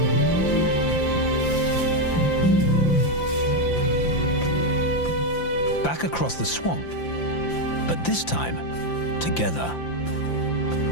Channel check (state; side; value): late; right; 5.8 ms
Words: Back across the swamp, but this time, together.